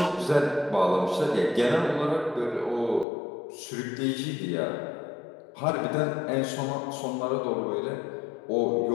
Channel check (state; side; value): drops out; right; at 3.1 s